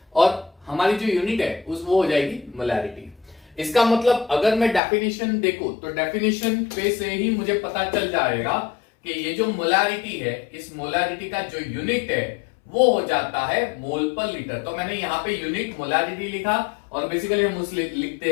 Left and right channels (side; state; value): right; drops out; at 4.8 s